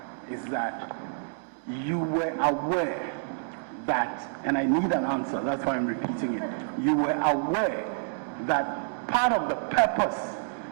is that you were aware that, and I need an answer, that's why I'm repeating it. You were aware that part of the purpose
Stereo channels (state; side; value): silent; left; digital silence